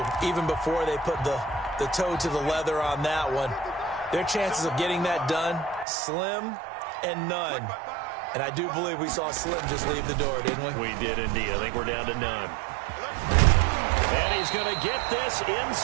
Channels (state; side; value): drops out; left; at 5.9 s